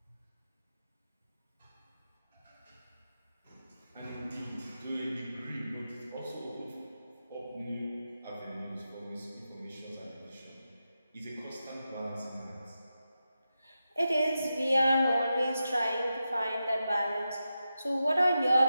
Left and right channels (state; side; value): inverted; both; correlation -0.90